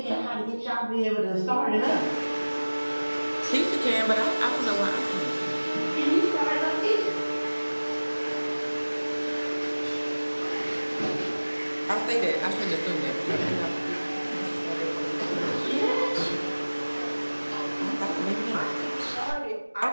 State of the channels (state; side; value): inverted; both; correlation -1.00